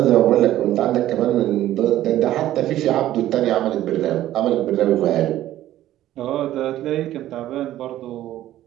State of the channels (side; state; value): left; quieter; 13.6 dB